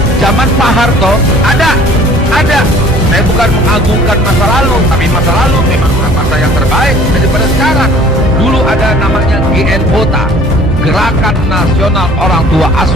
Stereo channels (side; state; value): both; normal; correlation 0.51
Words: zaman Pak Harto ada. Saya bukan mengagungkan masa lalu, tapi masa lalu memang masa yang terbaik daripada sekarang. Dulu ada namanya GNOTA, Gerakan Nasional Orang Tua